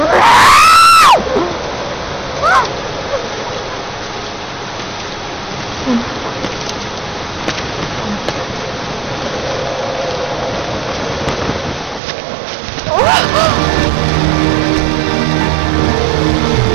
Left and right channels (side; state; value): left; drops out; at 12.0 s